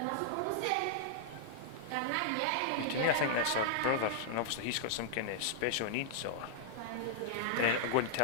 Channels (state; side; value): different; both; correlation -0.01